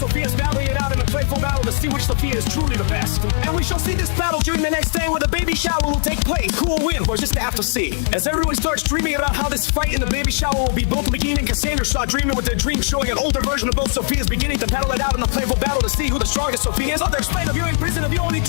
battling it out in a playful battle to see which Sophia is truly the best. And we shall see this battle during the next day, where the baby shower will take place. Who will win? We're just have to see. As everyone starts dreaming about how this fight in the baby shower will be, both Megan and Cassandra start dreaming with their dreams, showing an older version of both Sophias beginning to battle it out in a playful battle to see who the strongest Sophia is. Others explain of you in prison of you only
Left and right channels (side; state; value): right; silent; 66 dB below the other